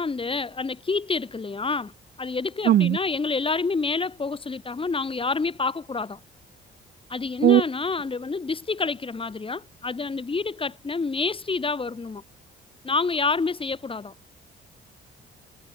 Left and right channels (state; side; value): normal; both; correlation 0.38